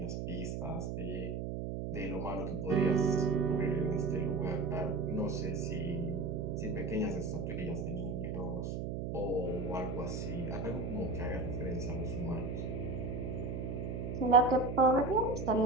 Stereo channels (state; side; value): noise; right; hum, 3 dB below the sound